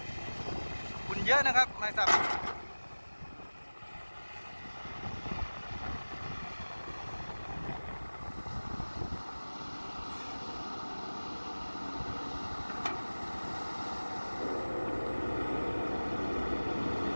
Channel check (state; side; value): inverted; both; correlation -1.00